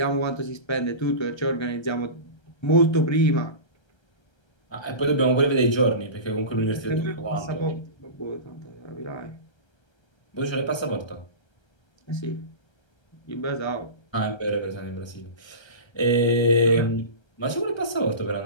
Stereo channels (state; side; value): late; right; 1.3 ms